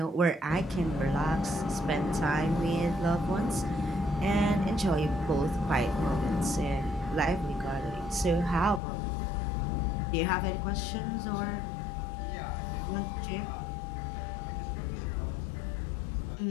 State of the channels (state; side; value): drops out; right; at 8.8 s